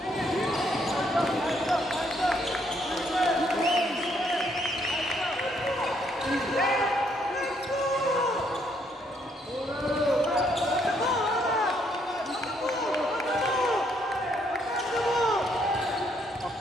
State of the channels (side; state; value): both; normal; correlation 0.70